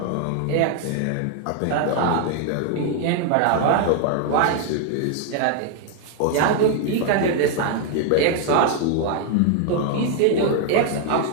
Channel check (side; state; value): both; different; correlation 0.00